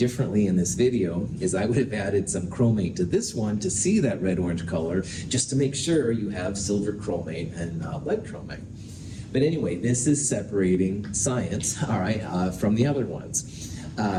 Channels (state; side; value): identical; both; correlation 1.00